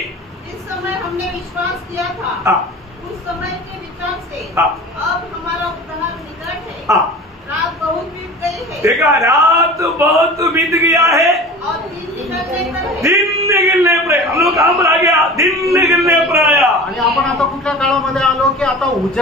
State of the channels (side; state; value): both; normal; correlation 0.38